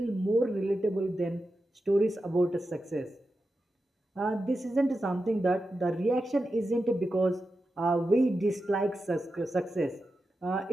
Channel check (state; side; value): normal; both; correlation 0.90